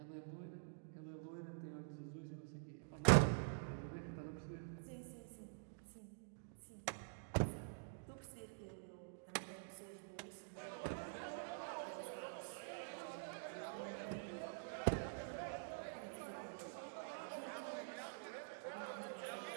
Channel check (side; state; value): left; silent; digital silence